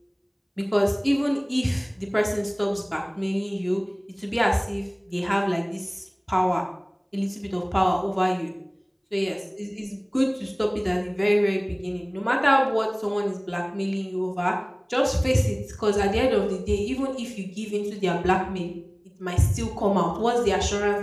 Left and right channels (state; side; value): identical; both; correlation 1.00